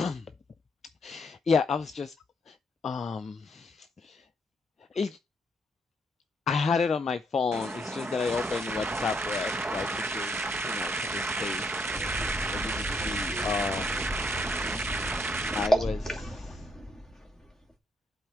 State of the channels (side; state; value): both; normal; correlation 0.74